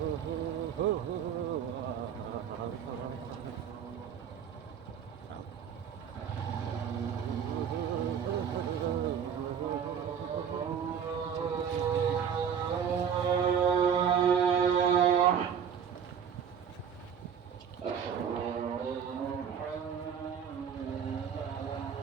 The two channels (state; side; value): quieter; left; 7.8 dB